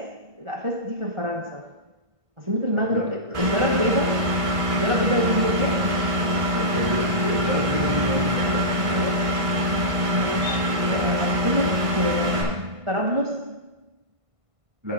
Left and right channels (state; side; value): late; left; 1.5 ms